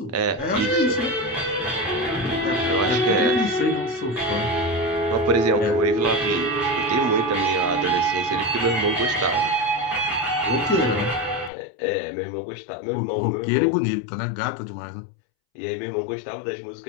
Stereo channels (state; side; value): drops out; right; at 11.5 s